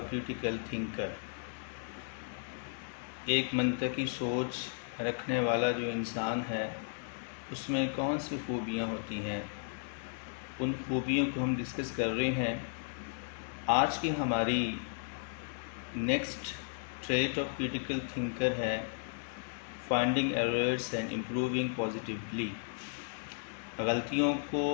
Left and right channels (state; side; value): silent; right; digital silence